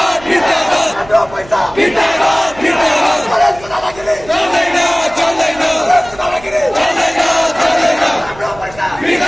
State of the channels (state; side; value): noise; right; hum, 20 dB below the sound